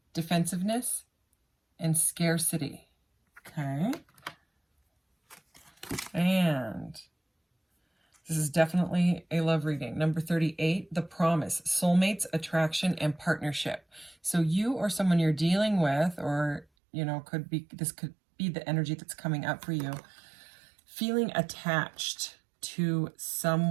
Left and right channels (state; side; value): drops out; left; at 16.7 s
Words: defensiveness, and scarcity. Okay. And this is definitely a love reading. Number 38, the promise, soulmates, attraction, and partnership. So you or someone you're dealing with, or, you know, this could be the energy that's coming up for you, feeling attached to